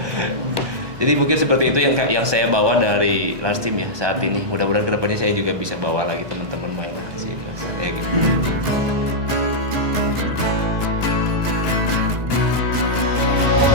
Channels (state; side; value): late; left; 1.2 ms